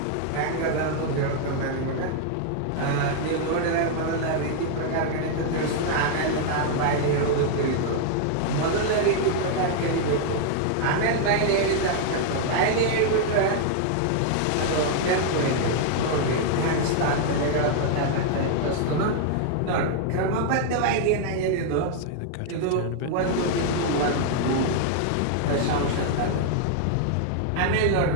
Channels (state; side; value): different; both; correlation 0.00